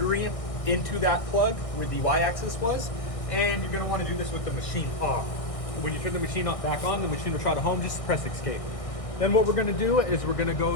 into that plug where the Y-axis was, and you're gonna wanna do this with the machine off. When you turn the machine off back on, the machine will try to home, just press escape. Then what we're gonna do is we're gonna go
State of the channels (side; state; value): right; late; 1.6 ms